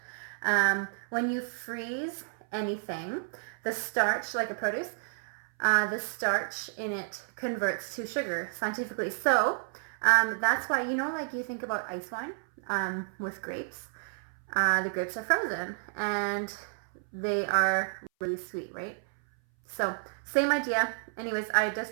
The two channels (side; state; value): left; silent; 57 dB below the other